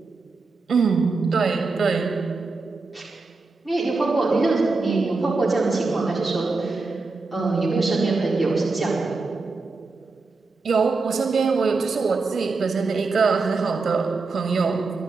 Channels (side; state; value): left; quieter; 3.9 dB